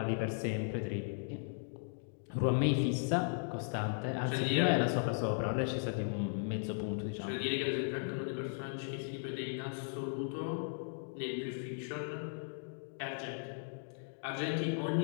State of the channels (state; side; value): silent; right; digital silence